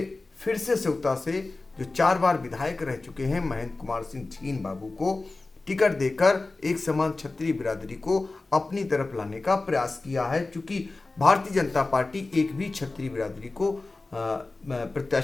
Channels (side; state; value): right; quieter; 3.3 dB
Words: फिर से सेवता से जो 4 बार विधायक रह चुके हैं महेंद्र कुमार सिंह छीन बाबू को टिकट देकर एक समान छत्री बिरादरी को अपनी तरफ लाने का प्रयास किया है, क्योंकि भारतीय जनता पार्टी एक भी छत्री बिरादरी को